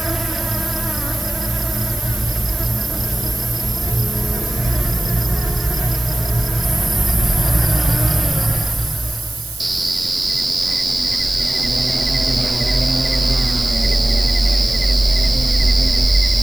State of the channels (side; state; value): right; noise; hiss, 13 dB below the sound